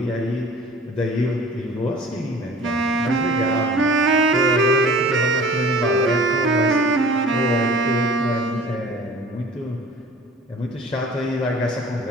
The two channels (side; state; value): both; normal; correlation 0.45